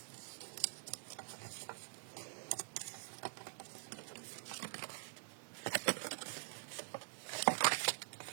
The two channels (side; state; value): left; silent; digital silence